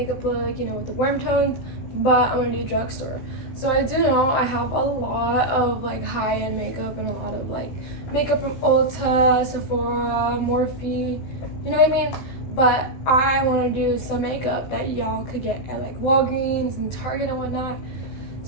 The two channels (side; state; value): right; late; 16 ms